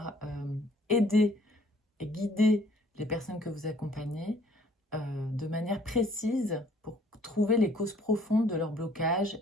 aider et guider les personnes que vous accompagnez de manière précise pour trouver les causes profondes de leur blocage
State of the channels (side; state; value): both; normal; correlation 0.59